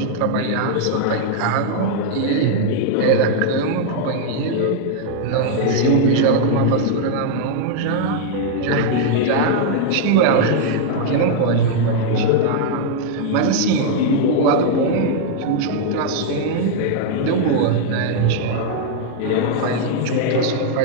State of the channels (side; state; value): both; different; correlation 0.00